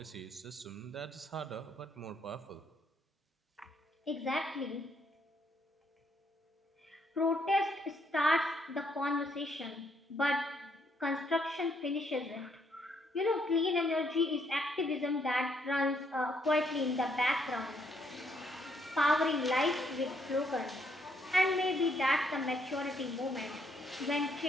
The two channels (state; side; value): normal; both; correlation 0.72